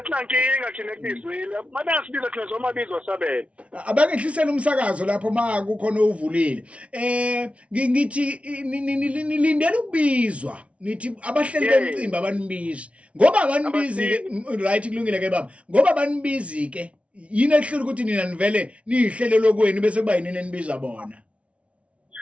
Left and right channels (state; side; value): late; left; 0.063 ms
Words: thina ekubizweni mabengasibiza thina zomabizwa sabela abangehlisela umsakazo lapho makukhona uvulile ngithi nilindele ukubizwa nithi abahleli bemcimbi abanibizi ngoba abanibizi right kulungile ke baba ngoba abanibizi ke yini ehlule ukuthi nina nivele nihlele lokweni bese kuba yini enibiza bona